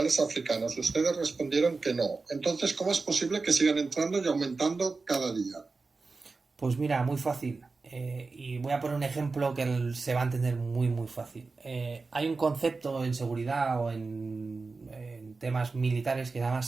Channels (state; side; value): quieter; left; 4.0 dB